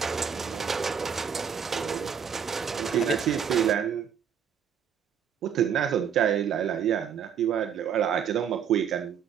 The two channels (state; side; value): quieter; left; 7.9 dB